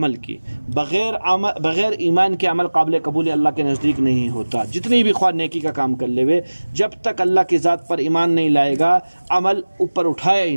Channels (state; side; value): inverted; both; correlation -1.00